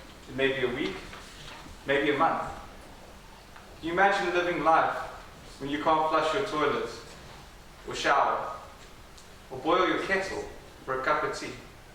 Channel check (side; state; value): both; identical; correlation 1.00